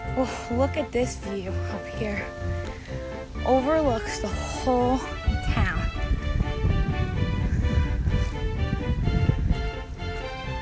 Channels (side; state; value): both; identical; correlation 1.00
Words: Oh, look at this view up here. Overlooks the whole town.